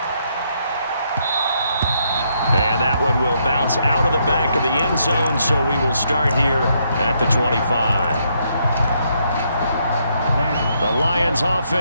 And that one will bounce out of the back of the end zone, so we will start here at the 25. The Lions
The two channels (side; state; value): both; inverted; correlation -0.75